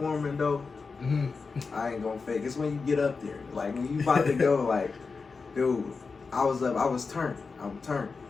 though, I ain't gonna fake. It's when you get up there, like when you about to go, like, dude, I was turned. I'm turned.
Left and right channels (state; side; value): quieter; right; 4.6 dB